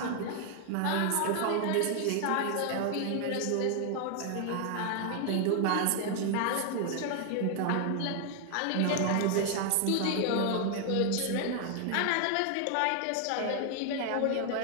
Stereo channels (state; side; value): different; both; correlation 0.00